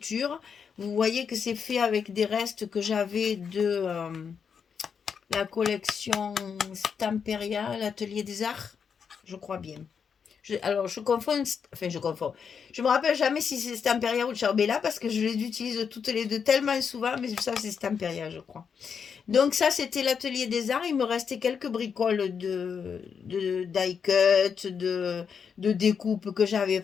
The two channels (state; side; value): quieter; right; 6.6 dB